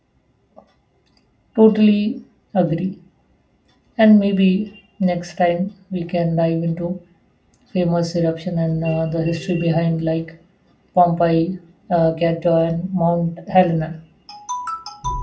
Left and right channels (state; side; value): identical; both; correlation 1.00